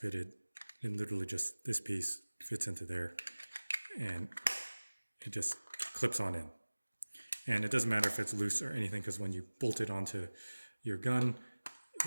And literally just this piece fits into there and it just clips on in. And it doesn't matter if it's loose or anything, because when you bolt it onto your gun,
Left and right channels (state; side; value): inverted; both; correlation -1.00